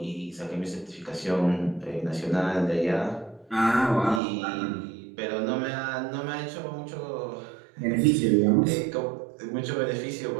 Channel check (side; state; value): left; drops out; at 4.2 s